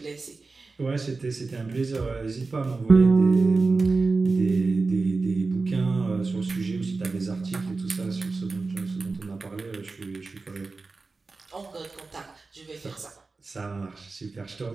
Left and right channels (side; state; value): left; quieter; 3.9 dB